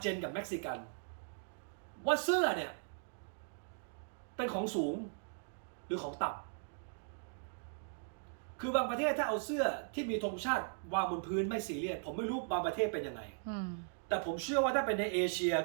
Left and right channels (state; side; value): silent; left; digital silence